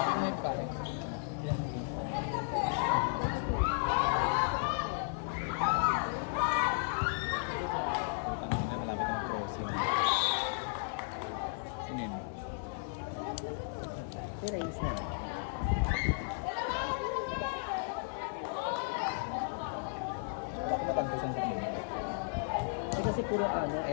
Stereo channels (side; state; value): right; silent; 55 dB below the other